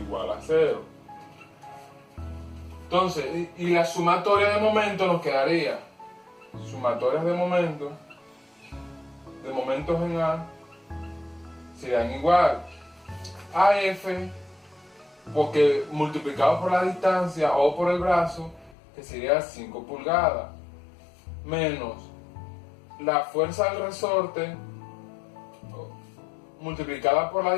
a 0. Entonces, y la sumatoria de momento nos quedaría, sumatorias de momentos en A, serían igual a F, porque multiplicado por la distancia o por el brazo, que sería 5 pulgadas, menos la fuerza del resorte multiplicada por la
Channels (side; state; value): right; drops out; at 18.8 s